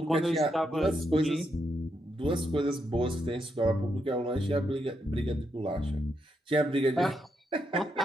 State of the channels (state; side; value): normal; both; correlation 0.81